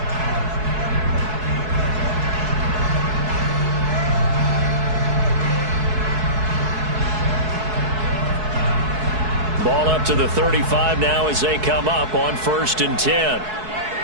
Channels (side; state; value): left; late; 4.7 ms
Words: Ball up to the 35 now as they come up on 1st and 10.